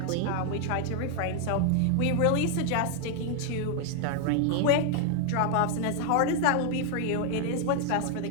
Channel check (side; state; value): both; different; correlation 0.00